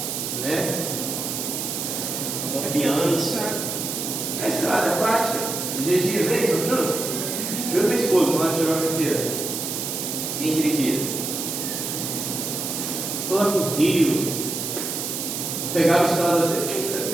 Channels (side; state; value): right; noise; hiss, 3 dB below the sound